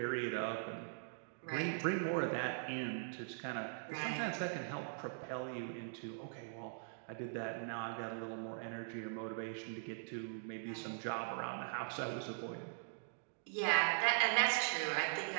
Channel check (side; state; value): left; silent; digital silence